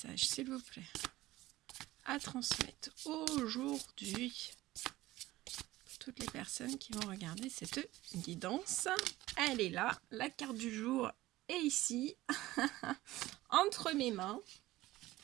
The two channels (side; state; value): left; quieter; 17.2 dB